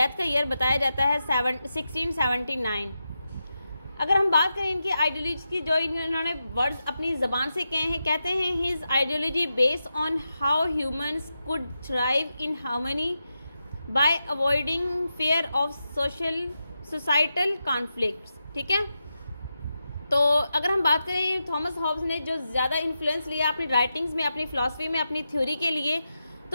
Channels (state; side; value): inverted; both; correlation -0.89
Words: का ईयर बताया जाता है 1679। अगर हम बात करें इनकी आइडियोलॉजी की, जो इन्होंने वर्ड्स अपनी ज़बान से कहे हैं, कहते हैं his ideology based on how humans could thrive in harmony bye avoiding fear of societal conflicts. ठीक है, तो अगर हम बात करें थॉमस हॉब्स ने जो ज़्यादा इन्फ्लुएंस लिया अपनी राइटिंग्स में, अपनी फिलॉसफी में, अपनी थ्योरी के लिए,